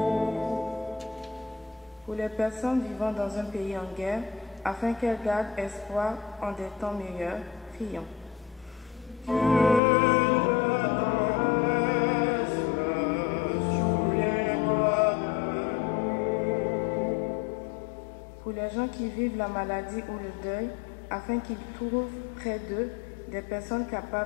Pour les personnes vivant dans un pays en guerre, afin qu'elles gardent espoir en des temps meilleurs, prions. Pour les gens qui vivent la maladie ou le deuil, afin qu'ils trouvent près d'eux des personnes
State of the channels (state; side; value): drops out; right; at 9.8 s